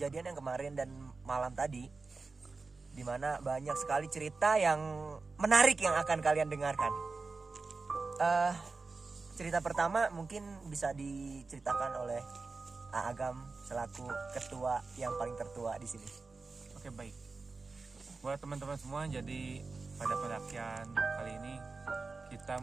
yang kemarin dan malam tadi, dimana banyak sekali cerita yang menarik yang akan kalian dengarkan. Cerita pertama mungkin bisa diceritakan oleh Agam selaku ketua yang paling tertua di sini. Oke, baik. Buat teman-teman semua, jadi pada pendakian kali ini kita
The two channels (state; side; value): quieter; left; 4.0 dB